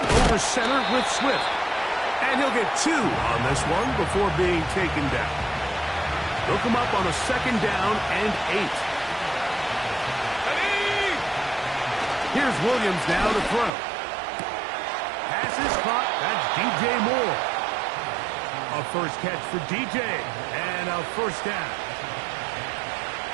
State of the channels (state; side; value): drops out; left; at 13.7 s